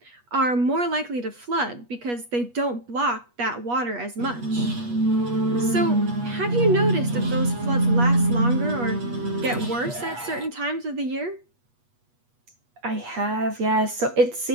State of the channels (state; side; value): late; left; 8.3 ms